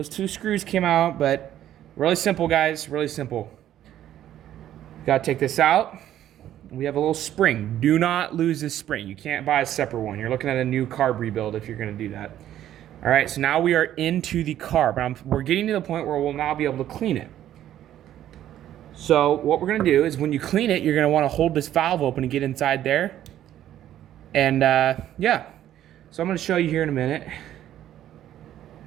2 screws came out, but really simple, guys, really simple. Gotta take this out. We have a little spring. Do not lose this spring. You can't buy a separate one. You're looking at a new carb rebuild if you're gonna do that. All right, so now we are into the carb. We're getting to the point where we'll now be able to clean it. So what we're gonna do is when you clean it, you're gonna wanna hold this valve open and get inside there. And yeah, so I'm gonna show you here in a minute.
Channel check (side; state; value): left; quieter; 11.9 dB